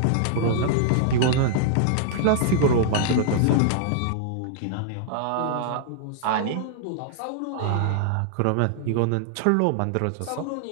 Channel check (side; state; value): both; different; correlation -0.01